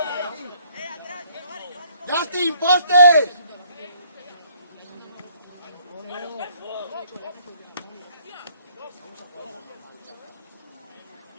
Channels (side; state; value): both; inverted; correlation -0.63